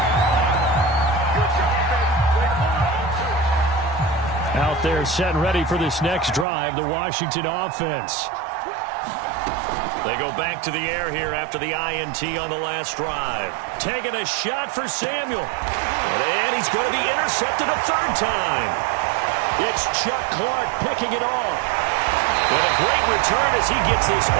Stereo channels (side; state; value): left; drops out; at 6.5 s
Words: Out there set and ready for this next drive, the Washington offense. They go back to the air here after the INT on the last drive. Taking a shot for Samuel. And he's going to be intercepted a third time. It's Chuck Clark picking it off. And a great return as he gets this